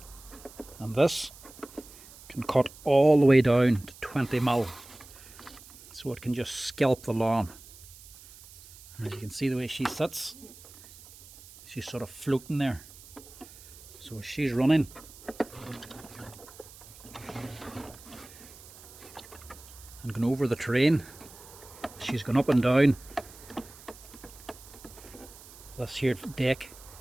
And this can cut all the way down to 20 mil. So it can just scalp the lawn. And as you can see the way she sits, she's sort of floating there. So as she's running, and going over the terrain, she's going up and down. This here deck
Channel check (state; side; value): noise; right; hiss, 19 dB below the sound